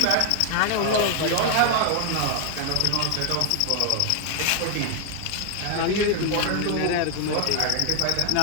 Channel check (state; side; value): different; both; correlation 0.00